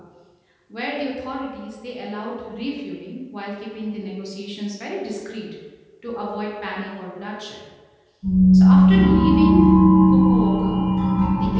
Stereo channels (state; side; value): identical; both; correlation 1.00